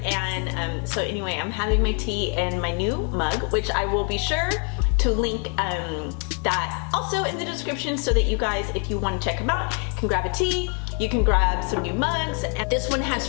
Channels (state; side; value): quieter; right; 38.9 dB